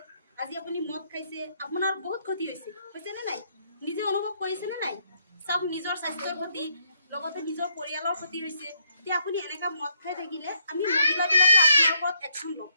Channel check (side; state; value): both; inverted; correlation -0.72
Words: আজি আপুনি মদ খাইছে, আপোনাৰ বহুত ক্ষতি হৈছেনে নাই? নিজে অনুভৱ কৰিছেনে নাই? চাওক, নিজৰ স্বাস্থ্যৰ ক্ষতি, লগতে নিজৰ পৰিয়ালৰ ক্ষতি হৈছে। এতিয়া আপুনি এনেকুৱা মদ খাই থাকিলে আমি মহিলাবিলাকে আপোনাৰ ওপৰত একশ্যন ল'ম।